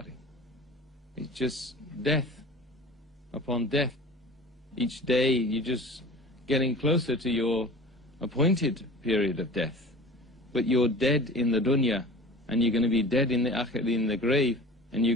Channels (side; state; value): both; normal; correlation 0.40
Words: it. It's just death upon death. Each day you're just getting closer to your appointed period of death. But you're dead in the dunya, and you're going to be dead in the grave, and